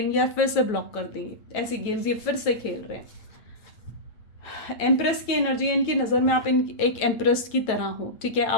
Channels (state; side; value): late; right; 9.1 ms